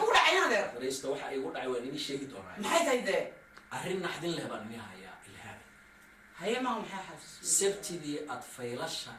dhacay hada fariista waxa ay ugu dhacay waan inii sheegi doonaa maxay tahay de arrin naxdin leh baan inii hayaa ilhaan haye ma maxay xafis sabtidii aad faylasha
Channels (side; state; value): both; identical; correlation 1.00